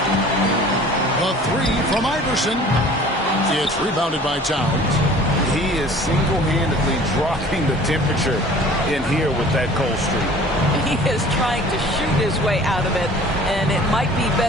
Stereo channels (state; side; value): normal; both; correlation 0.47